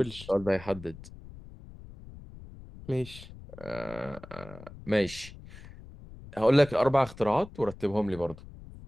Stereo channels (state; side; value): noise; left; rumble, 17 dB below the sound